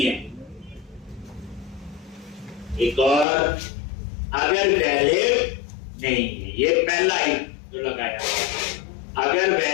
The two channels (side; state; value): right; drops out; at 3.2 s